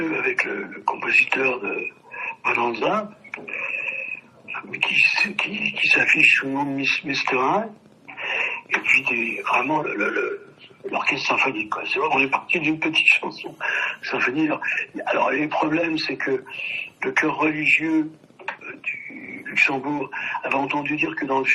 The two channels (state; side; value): identical; both; correlation 1.00